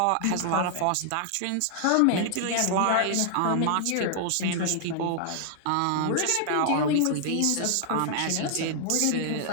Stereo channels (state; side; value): different; both; correlation 0.00